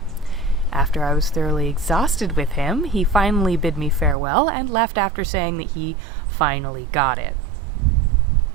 After I was thoroughly exhausted with him, he finally bid me farewell and left after saying that he finally got it.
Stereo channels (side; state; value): left; drops out; at 4.2 s